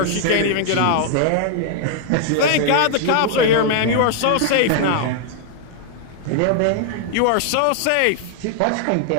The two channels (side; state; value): both; different; correlation 0.00